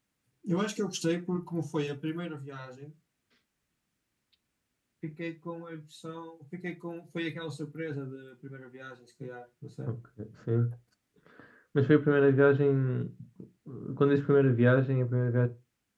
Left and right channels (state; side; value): identical; both; correlation 1.00